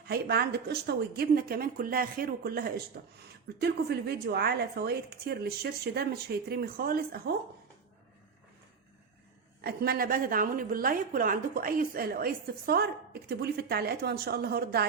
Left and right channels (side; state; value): left; quieter; 5.7 dB